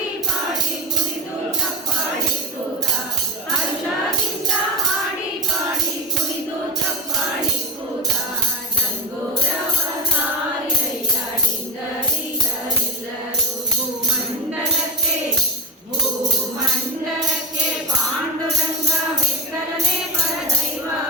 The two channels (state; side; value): normal; both; correlation 0.15